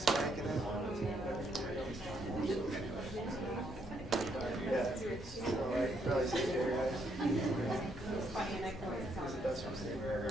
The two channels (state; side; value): normal; both; correlation 0.74